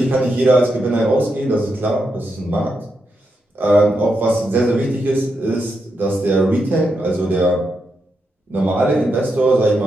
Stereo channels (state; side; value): normal; both; correlation 0.84